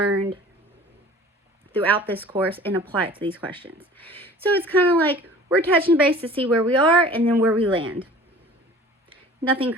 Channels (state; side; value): normal; both; correlation 0.45